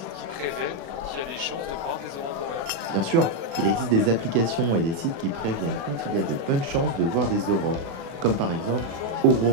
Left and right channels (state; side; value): late; left; 36 ms